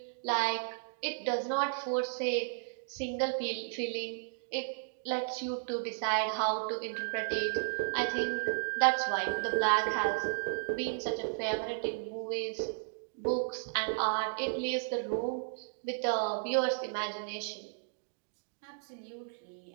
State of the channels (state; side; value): silent; left; digital silence